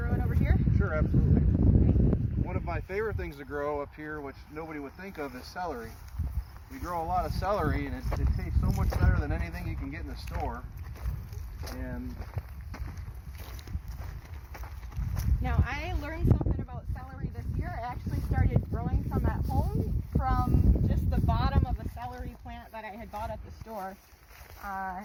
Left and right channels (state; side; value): identical; both; correlation 1.00